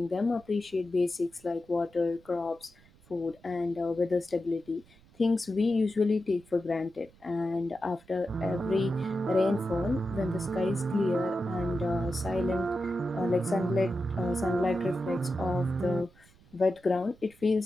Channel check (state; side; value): noise; right; rumble, 27 dB below the sound